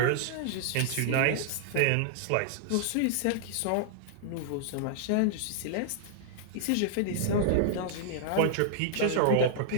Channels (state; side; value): different; both; correlation -0.01